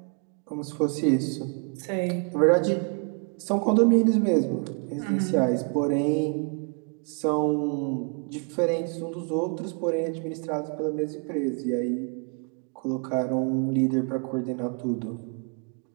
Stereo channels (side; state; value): left; quieter; 37.2 dB